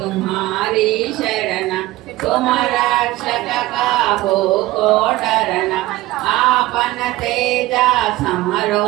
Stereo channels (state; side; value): quieter; left; 17.6 dB